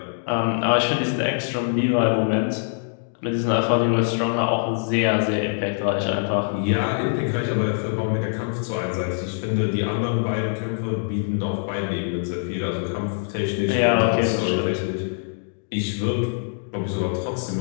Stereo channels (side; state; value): right; silent; digital silence